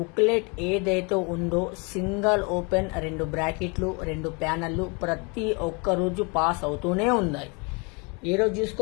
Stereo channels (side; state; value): right; quieter; 31.3 dB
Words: ఏదైతే ఉందో సింగిల్ ఓపెన్ 2 బ్రాకెట్లు 2 ప్యానెళ్ళు ప్రతి ఒక్క రోజు పాస్ అవుతూనే ఉన్నాయి. ఈరోజు